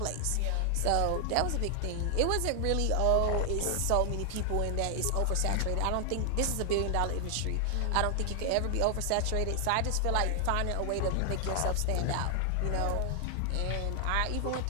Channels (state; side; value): different; both; correlation 0.00